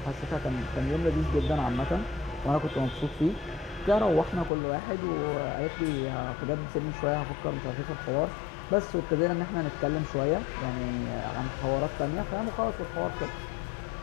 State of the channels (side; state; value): right; drops out; at 4.5 s